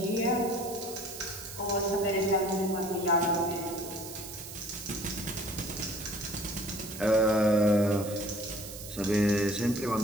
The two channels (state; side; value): noise; right; hiss, 12 dB below the sound